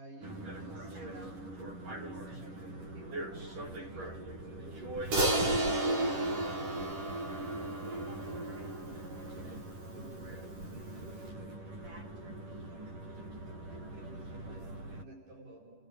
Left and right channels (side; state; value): left; late; 10 ms